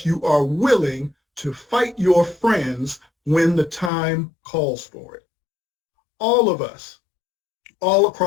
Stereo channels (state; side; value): drops out; right; at 3.9 s